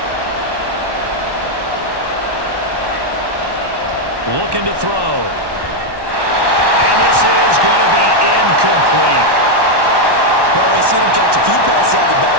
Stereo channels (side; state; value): left; late; 1.1 ms